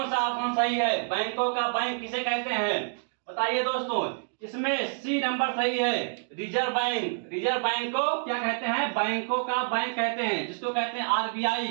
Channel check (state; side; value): silent; left; digital silence